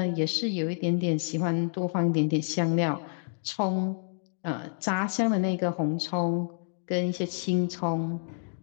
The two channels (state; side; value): silent; right; digital silence